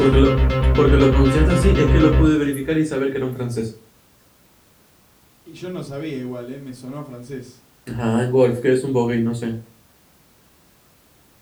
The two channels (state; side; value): identical; both; correlation 1.00